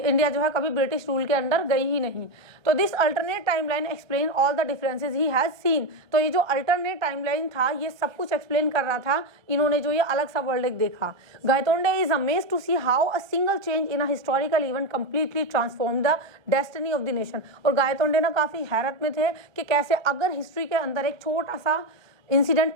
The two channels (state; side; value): late; left; 1.2 ms